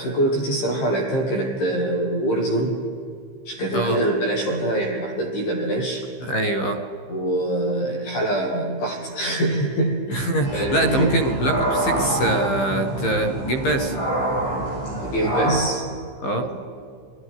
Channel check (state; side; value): late; right; 15 ms